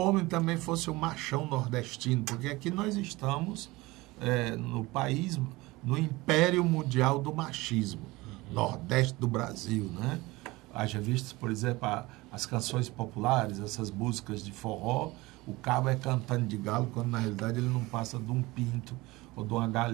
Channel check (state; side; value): quieter; left; 21.2 dB